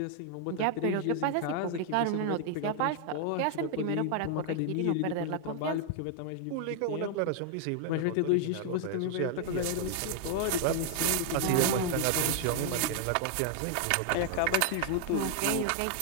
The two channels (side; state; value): both; different; correlation 0.00